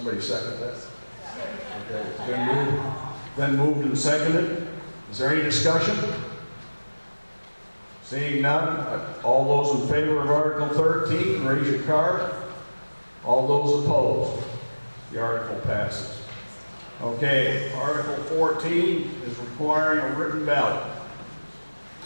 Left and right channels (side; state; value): both; inverted; correlation -1.00